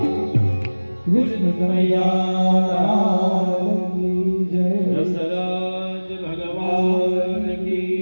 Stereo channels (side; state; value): both; inverted; correlation -1.00